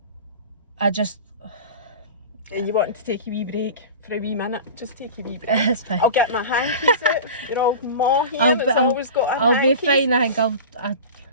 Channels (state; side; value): inverted; both; correlation -0.33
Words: I just... And you wanted to take a wee break for a wee minute? Just take a wee break. It's fine. I'll get my hankies out. You're all more here. Always got a I'll hankies. be fine. I think